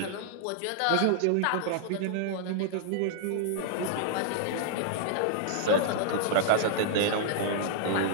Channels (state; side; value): different; both; correlation -0.01